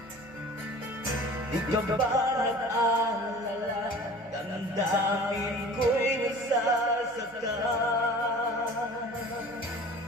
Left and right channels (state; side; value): noise; right; hum, 27 dB below the sound